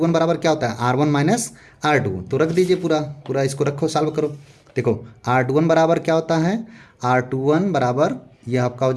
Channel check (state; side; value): identical; both; correlation 1.00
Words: बराबर क्या होता है, R1 माइनस R2। तो रख दीजिए पूरा इसको रखो, सॉल्व करो। देखो R21 बराबर क्या होता है, R21 बराबर यह आपका हो